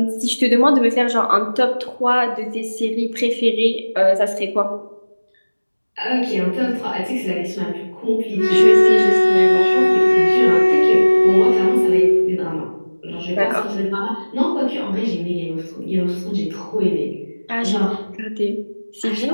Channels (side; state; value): both; inverted; correlation -1.00